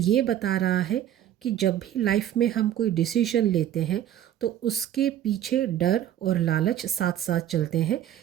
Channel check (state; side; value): quieter; left; 11.3 dB